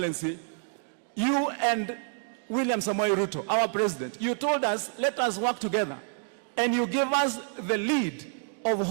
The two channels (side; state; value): left; silent; 59 dB below the other